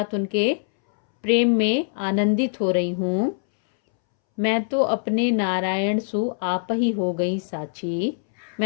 उनके प्रेम में आनंदित हो रही हूँ। मैं तो अपने नारायण सु आप ही हो गई साची।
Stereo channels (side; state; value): right; silent; 63 dB below the other